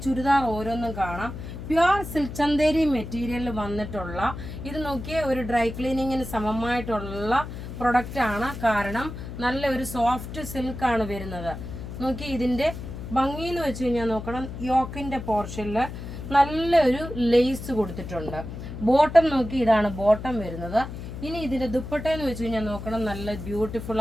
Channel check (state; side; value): noise; left; hum, 9 dB below the sound